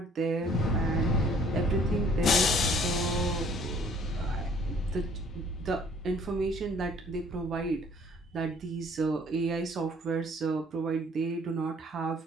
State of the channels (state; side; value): normal; both; correlation 0.57